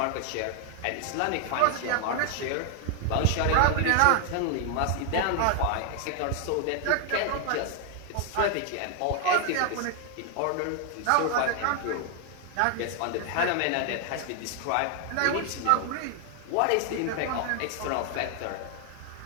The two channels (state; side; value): different; both; correlation 0.00